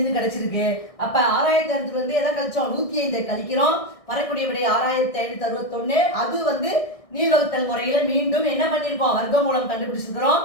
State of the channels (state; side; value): late; right; 1.6 ms